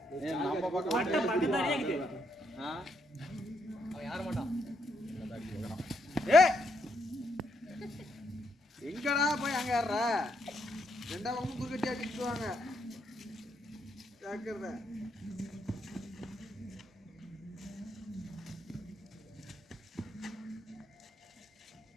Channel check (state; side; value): normal; both; correlation 0.77